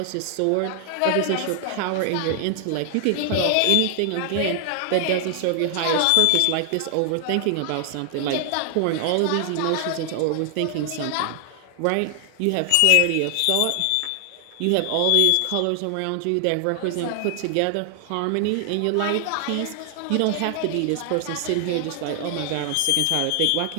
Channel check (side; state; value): both; different; correlation 0.00